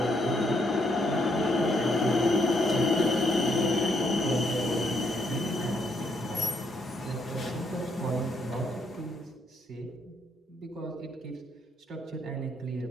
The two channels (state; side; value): normal; both; correlation 0.74